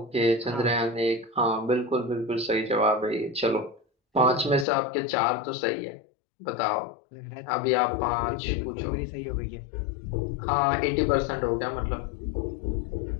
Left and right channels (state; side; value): drops out; right; at 4.7 s